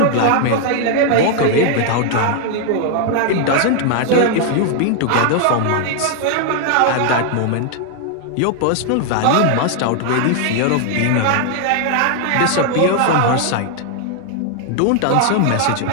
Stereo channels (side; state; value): both; different; correlation 0.00